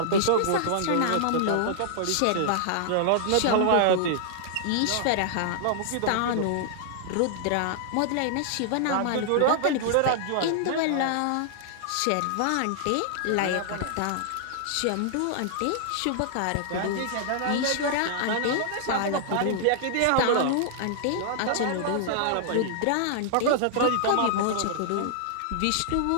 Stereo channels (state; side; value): different; both; correlation -0.01